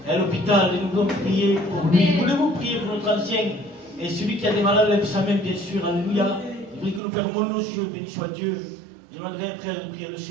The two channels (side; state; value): left; drops out; at 7.0 s